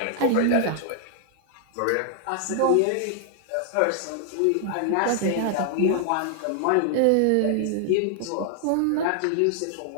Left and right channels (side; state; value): both; different; correlation 0.00